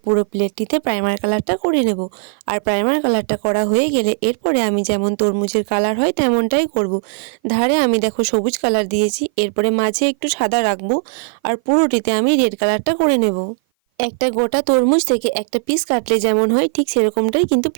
প্লেটটিতে প্রাইমার কালারটা করে নেব। আর প্রাইমার কালারটা করা হয়ে গেলে এরপরে আমি যেমন তরমুজের কালার হয় তেমনটাই করব। ধারে আমি দেখো সবুজ কালার দিয়েছি, এরপরে মাঝে একটু সাদা রাখবো। আর পুরোটিতে আমি রেড কালারটা করে নেব। একটা গোটা তরমুজ থেকে একটা পিস কাটলে যেমন হয় ঠিক সেরকমটাই কিন্তু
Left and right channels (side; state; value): left; silent; 57 dB below the other